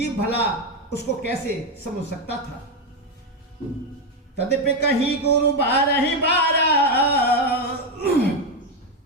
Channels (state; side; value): normal; both; correlation 0.08